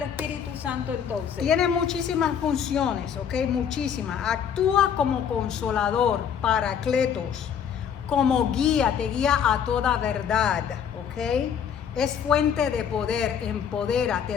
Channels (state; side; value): quieter; right; 8.0 dB